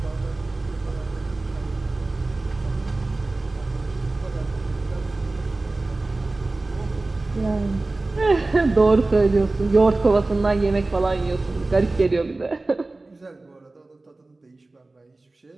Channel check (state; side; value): quieter; left; 3.1 dB